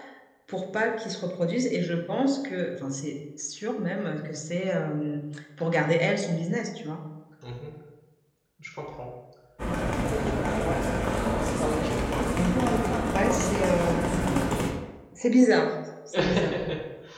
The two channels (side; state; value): both; identical; correlation 1.00